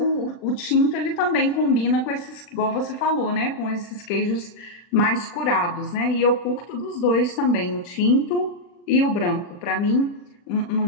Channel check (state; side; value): late; right; 40 ms